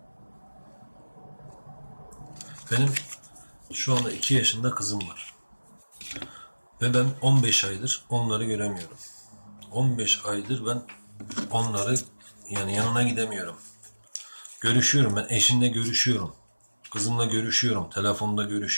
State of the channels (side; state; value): both; inverted; correlation -1.00